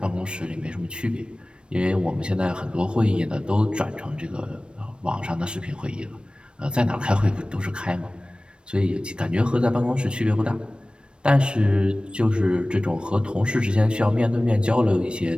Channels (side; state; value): left; late; 0.056 ms